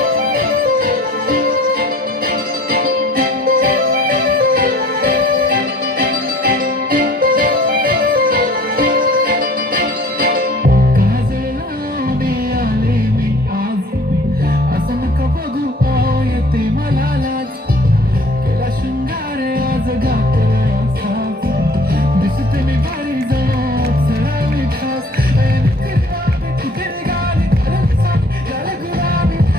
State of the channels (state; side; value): normal; both; correlation 0.51